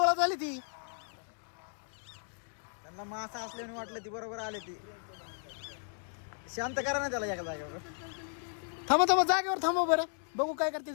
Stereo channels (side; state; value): right; silent; digital silence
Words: झाली ती. त्यांना मासा असल्याने वाटलं ती बरोबर आले ती. शांत करा ना त्याला एका जागेवर. थांबा जागेवर थांबा बरं. बघू काय करते